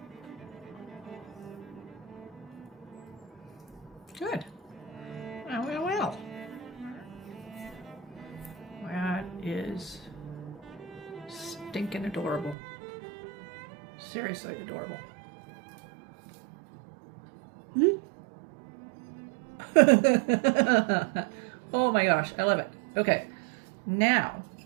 Good. Well. That is stinking adorable. Seriously adorable. Oh my gosh, I love it. Okay, now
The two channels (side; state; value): left; drops out; at 12.6 s